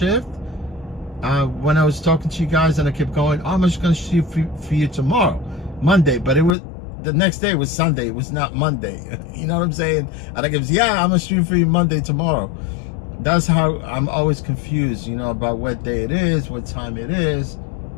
when I was talking to you guys and I kept going, oh, I'm just going to shoot for you tomorrow, Monday. But it was, the next day was Sunday. It was not Monday. You know what I'm saying? And I kept, yeah, I'm going to shoot for you Monday tomorrow. That's how I'm always confused, about what day it is, what time it is,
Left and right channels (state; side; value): drops out; right; at 6.6 s